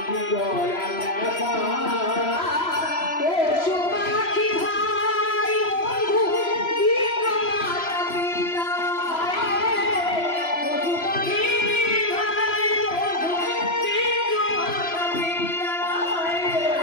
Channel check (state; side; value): late; right; 3.0 ms